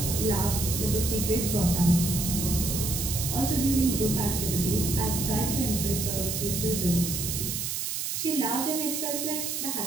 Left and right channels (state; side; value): noise; right; hiss, 2 dB below the sound